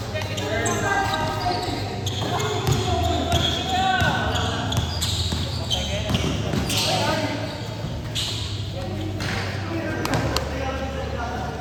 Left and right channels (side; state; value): both; identical; correlation 1.00